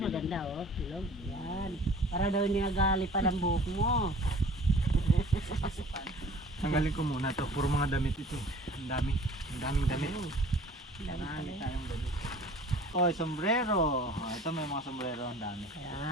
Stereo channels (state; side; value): normal; both; correlation 0.47